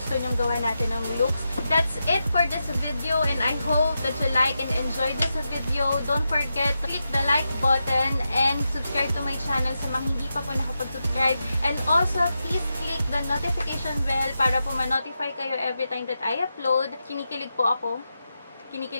nyong gawa natin ng looks. That's it for this video, and I hope that you like and enjoy this video. Don't forget to click the like button and subscribe to my channel sa mga hindi pa po nakapag-subscribe. And also, please click the notification bell para po ma-notify kayo every time that I upload. Kinikilig po ako.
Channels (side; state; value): both; inverted; correlation -0.88